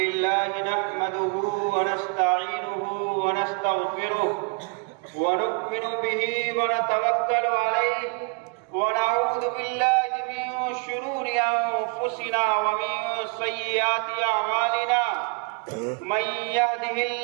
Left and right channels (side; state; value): left; quieter; 33.5 dB